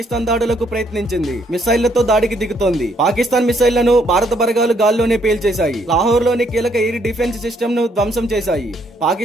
దాడులకు ప్రయత్నించింది. మిసైళ్లతో దాడికి దిగుతోంది. పాకిస్తాన్ మిసైళ్లను భారత బలగాలు గాల్లోనే పేల్చేశాయి. లాహోర్ లోని కీలక ఎయిర్ డిఫెన్స్ సిస్టమ్ ను ధ్వంసం చేశాయి.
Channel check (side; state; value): both; normal; correlation 0.70